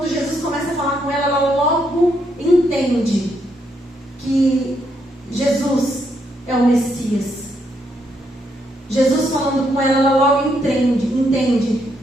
Jesus começa a falar com ela, ela logo entende que Jesus é o Messias. Jesus falando com ela, ela logo entende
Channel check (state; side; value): normal; both; correlation 0.76